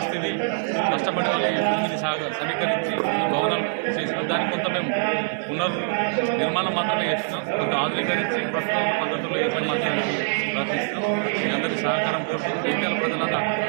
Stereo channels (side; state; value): left; silent; digital silence